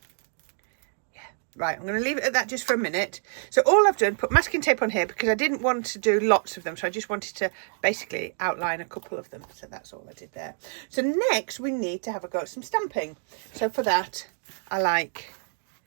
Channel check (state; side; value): silent; left; digital silence